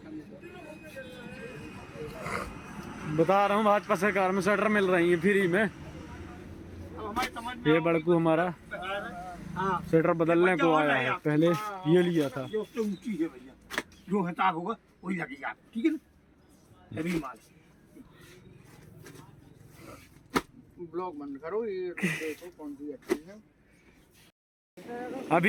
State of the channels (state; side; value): identical; both; correlation 1.00